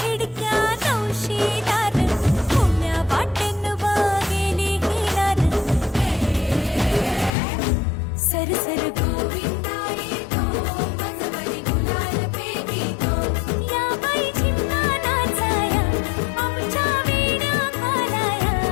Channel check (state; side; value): drops out; right; at 7.3 s